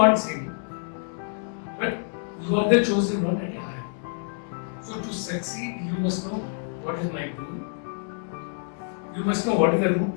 same, but you are the chosen one at a higher. So to succeed, you must know what is my goal. you must know what is the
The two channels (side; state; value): right; silent; 60 dB below the other